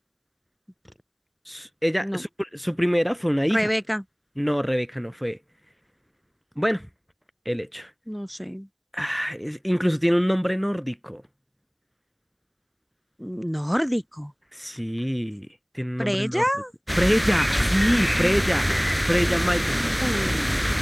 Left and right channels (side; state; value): both; identical; correlation 1.00